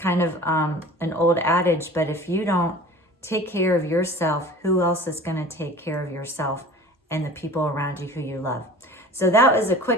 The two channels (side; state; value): both; normal; correlation 0.42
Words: of an old adage, but if you don't take care of yourself, who else is going to take care of yourself and the people around you who you love? So that was a